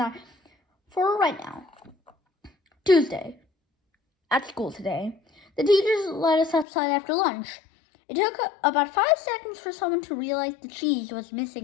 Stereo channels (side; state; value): right; drops out; at 6.7 s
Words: for right now. Tuesday. At school today, the teachers let us outside after lunch. It took about 5 seconds for someone to realize the cheese was